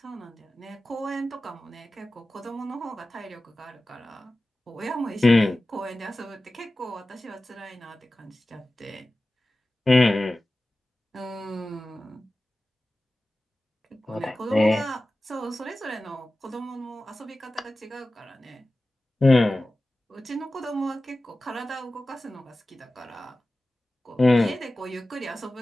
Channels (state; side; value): normal; both; correlation 0.96